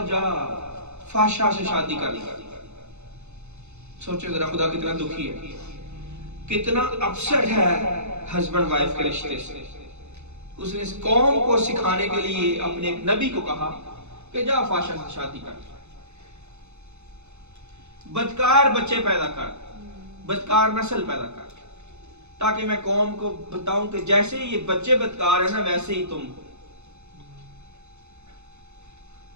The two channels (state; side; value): late; left; 0.82 ms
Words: जा फाशा से शादी कर ली। सोचो जरा खुदा कितना दुखी है, कितना अपसेट है हस्बैंड वाइफ के रिश्ते से। उसने इस कौम को सिखाने के लिए अपने एक नबी को कहा कि जा फाशा से शादी कर, बदकार बच्चे पैदा कर, बदकार नस्ल पैदा कर, ताकि मैं कौम को बताऊं कि जैसे ये बच्चे बदकार है ना, वैसे ही तुम